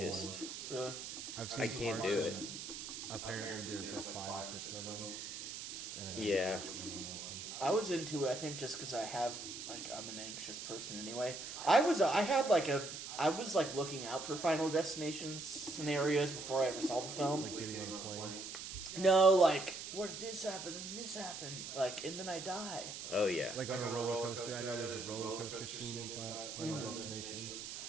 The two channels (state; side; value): noise; right; hiss, 8 dB below the sound